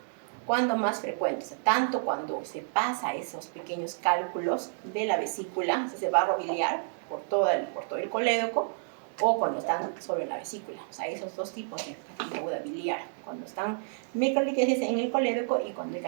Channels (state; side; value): silent; left; digital silence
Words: ¿Cuándo más frecuente? O sea, tanto cuando se pasa esos pequeños cálculos de la vesícula, ese barro biliar, por todo el colédoco, o cuando están solo en la vesícula. O sea, esos dos tipos de pancreatitis aguda biliar, cuando están microlitiasis en el colédoco y cuando hay